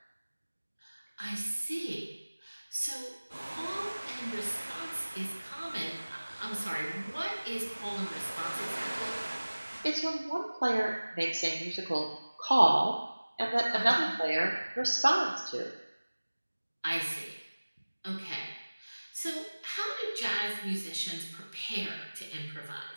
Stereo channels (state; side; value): inverted; both; correlation -1.00